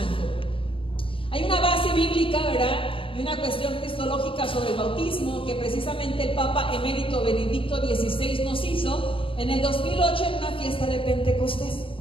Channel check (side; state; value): right; late; 0.25 ms